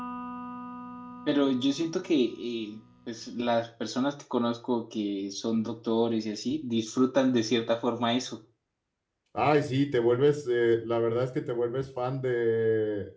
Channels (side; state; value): both; identical; correlation 1.00